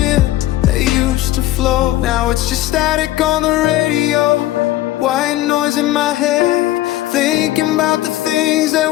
that used to float. Now it's just static on the radio, white noise in my head, thinking about the things that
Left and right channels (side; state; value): right; quieter; 15.4 dB